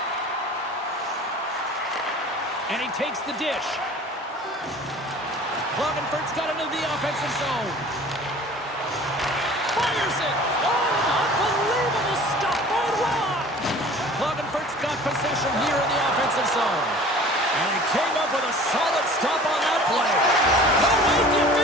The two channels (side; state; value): both; normal; correlation 0.45